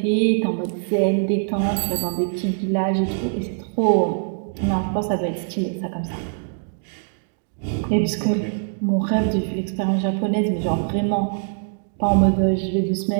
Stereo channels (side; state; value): left; silent; digital silence